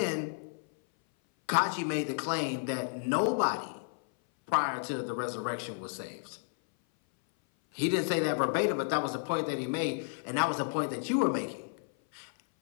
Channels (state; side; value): silent; right; 57 dB below the other